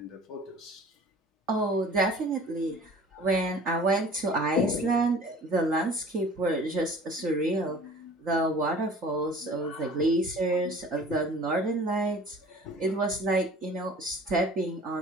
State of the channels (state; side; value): normal; both; correlation 0.46